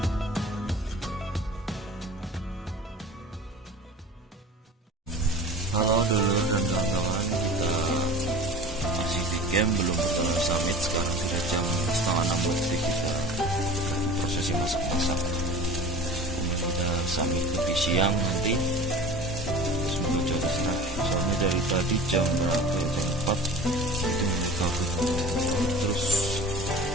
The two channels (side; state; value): both; normal; correlation 0.39